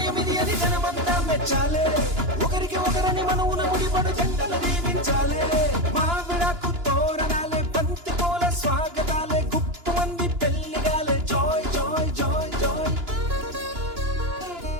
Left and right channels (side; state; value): left; late; 2.9 ms